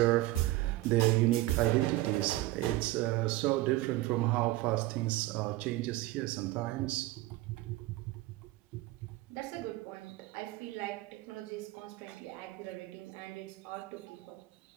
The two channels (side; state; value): left; quieter; 17.7 dB